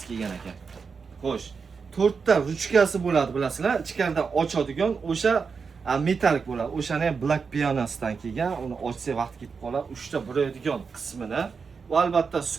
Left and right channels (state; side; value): quieter; left; 5.4 dB